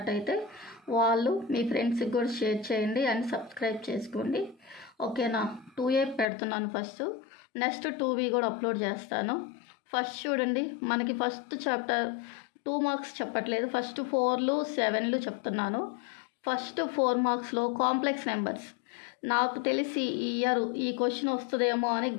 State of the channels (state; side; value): drops out; right; at 6.2 s